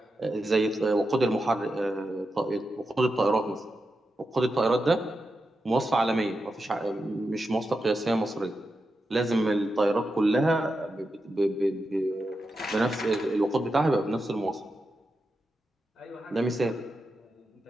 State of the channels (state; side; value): normal; both; correlation 0.88